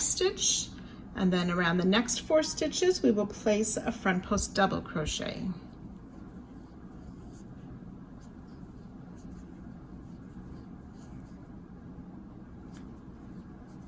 stitch, and then around the next 4 stitches we will place a front post double crochet.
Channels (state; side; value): identical; both; correlation 1.00